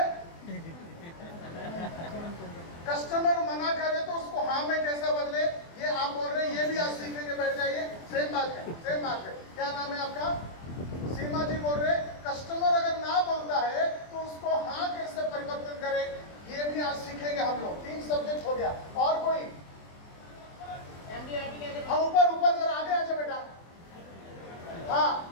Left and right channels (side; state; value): right; late; 24 ms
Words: कस्टमर मना करे तो उसको हाँ में कैसे बदले, ये आप बोल रहे हैं, ये भी आज सीखेंगे। बैठ जाइए, सेम बात है, सेम बात है। क्या नाम है आपका? सीमा जी बोल रहे कस्टमर अगर ना बोलता है तो उसको हाँ कैसे परिवर्तन करे, ये भी आज सीखेंगे हम लोग। 3 सब्जेक्ट हो गया। और कोई? हाँ, ऊपर जरा आगे आ जाए बेटा। हाँ